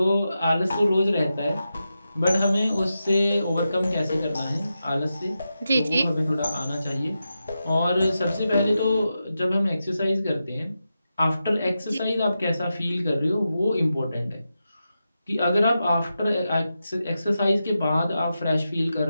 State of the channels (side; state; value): both; inverted; correlation -0.89